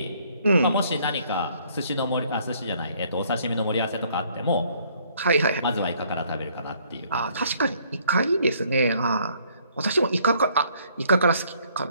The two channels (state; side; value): inverted; both; correlation -0.64